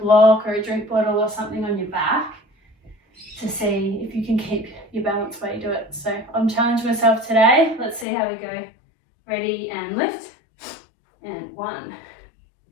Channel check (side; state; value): right; drops out; at 8.1 s